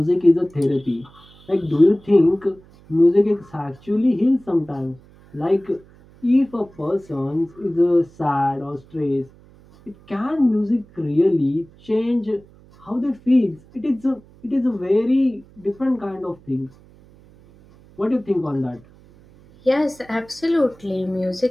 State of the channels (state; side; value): noise; right; hum, 26 dB below the sound